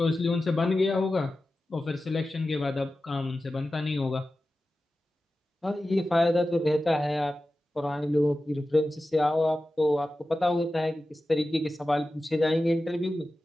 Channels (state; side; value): normal; both; correlation 0.94